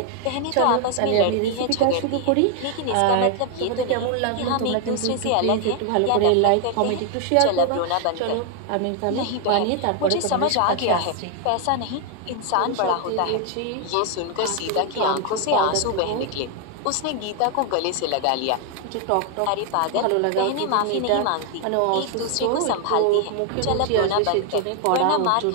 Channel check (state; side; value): different; both; correlation 0.00